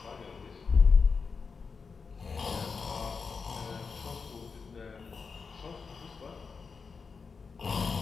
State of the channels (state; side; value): quieter; right; 5.1 dB